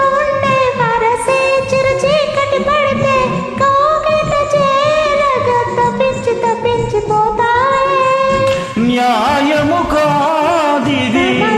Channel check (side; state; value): both; identical; correlation 1.00